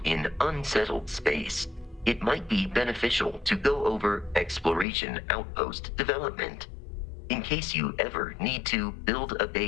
in unsettled space, it might be beneficial to go over exploration outpost development, in case you ever need to build a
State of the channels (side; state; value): right; drops out; at 4.9 s